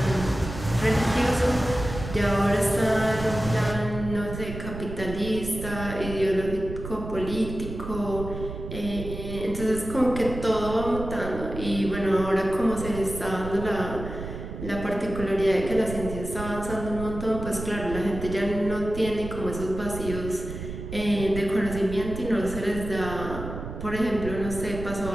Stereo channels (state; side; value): noise; right; rumble, 8 dB below the sound